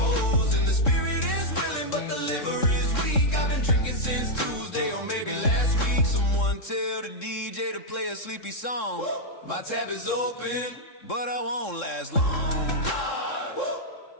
The spirit is willing, but the liver is weak. I've been drinking since Tuesday or maybe last week. Someone tell the DJ to play a sleepy song. My tab is open, but I won't last long.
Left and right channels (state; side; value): late; right; 3.7 ms